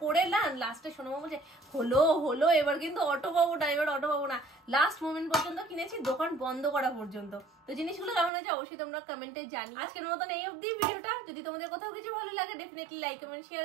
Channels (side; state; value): left; drops out; at 8.3 s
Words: করে। না লাস্টে সোনামা বলছে হলো এবার কিন্তু অটো পাবো না, এবার অটো পাবো না। লাস্ট মোমেন্ট পর্যন্ত কিনেছি, দোকান বন্ধ করা পর্যন্ত। তো জিনিসগুলো কেমন আছে অবশ্যই তোমরা কমেন্টে জানি। আজকের মতন এই অবধি ভিডিওটা। যদি তোমাদের কোথাও কিছু ভালো লাগে ডেফিনেটলি লাইক কমেন্ট শেয়ার